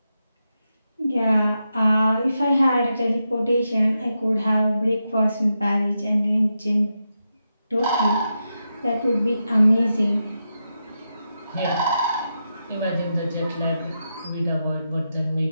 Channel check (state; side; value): inverted; both; correlation -0.87